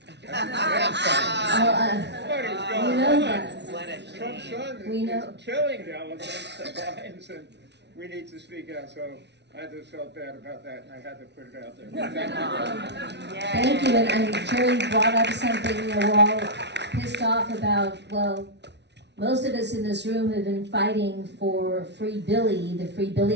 What is You going know on? that. What a Trump's shame. son We know. is killing the elephants, the lions, and we need to speak out. So I just felt bad about that, and I had to put it out there. Thank you, and Jerry brought up something, we're all pissed off about, well, most of us in this room have been fighting for Free Billy, the Free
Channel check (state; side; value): late; left; 0.50 ms